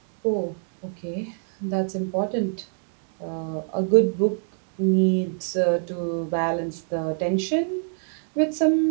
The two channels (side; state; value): left; silent; 56 dB below the other